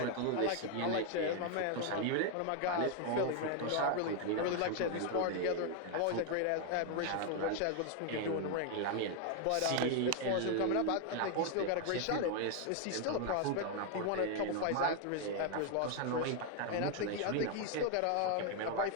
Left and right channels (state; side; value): different; both; correlation 0.01